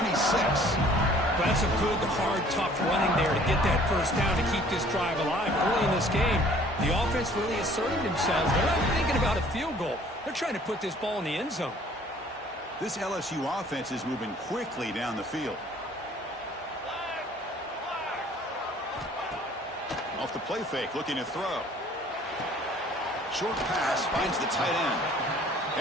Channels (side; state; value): both; normal; correlation 0.54